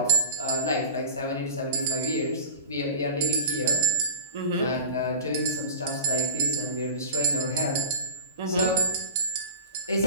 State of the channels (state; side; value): inverted; both; correlation -0.36